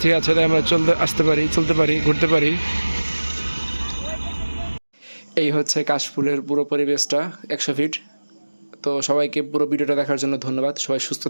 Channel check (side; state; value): both; inverted; correlation -1.00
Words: আছে তাই আমরা চলতে পারি, ঘুরতে পারি। এই হচ্ছে কাশফুলের পুরো পরিবেশটা 100 ফিট। তো সবাইকে পুরো ভিডিওটা দেখার জন্য ধন্যবাদ। সবাই সুস্থ